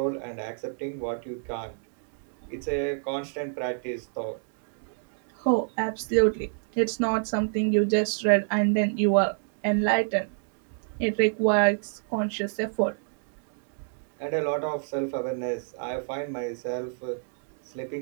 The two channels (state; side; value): silent; left; 59 dB below the other